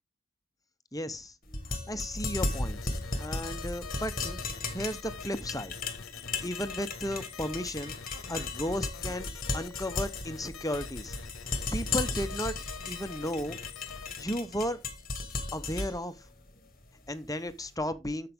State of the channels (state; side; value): normal; both; correlation 0.69